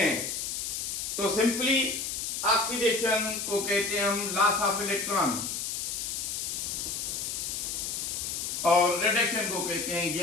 तो सिंपली ऑक्सीडेशन को कहते हैं हम लॉस ऑफ इलेक्ट्रॉन और रिडक्शन को कहते हैं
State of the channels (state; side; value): noise; left; hiss, 3 dB below the sound